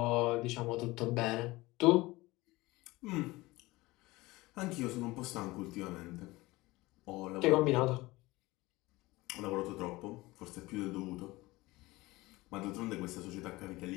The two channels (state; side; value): quieter; right; 20.5 dB